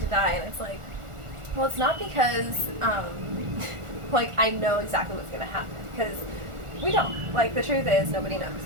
to die. And it's like, well, it's not because, like, I know exactly what's going to happen, because we don't. Like, the truth is, nobody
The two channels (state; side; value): late; left; 1.4 ms